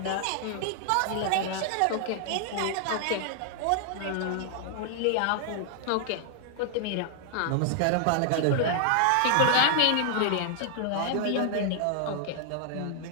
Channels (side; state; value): both; different; correlation 0.00